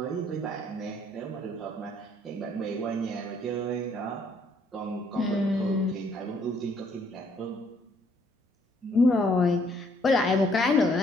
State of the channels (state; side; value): normal; both; correlation 0.66